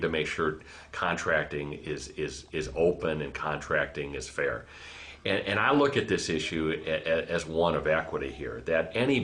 make sure contracting is open and contracting is fair. And I look at this issue as one of equity here, that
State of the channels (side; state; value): both; identical; correlation 1.00